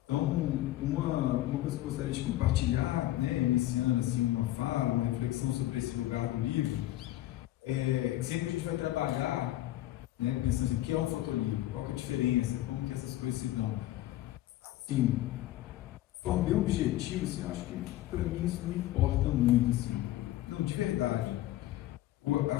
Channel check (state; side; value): quieter; right; 15.3 dB